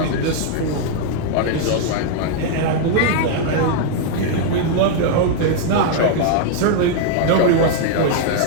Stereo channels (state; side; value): different; both; correlation 0.00